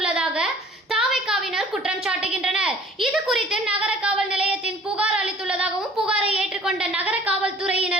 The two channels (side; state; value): both; normal; correlation 0.52